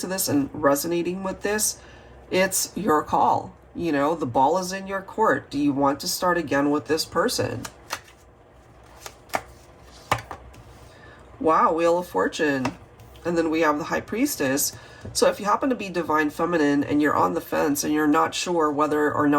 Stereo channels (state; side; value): identical; both; correlation 1.00